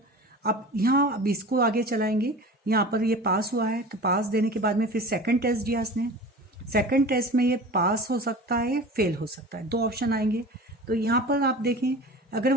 अब इसको आगे चलाएंगे। यहाँ पर ये पास हुआ है तो पास देने के बाद में फिर सेकंड टेस्ट दिया इसने, सेकंड टेस्ट में ये पास हो सकता है, फेल हो सकता है, 2 ऑप्शन आएंगे। तो यहाँ पर आप देखें, अगर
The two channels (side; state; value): both; normal; correlation 0.37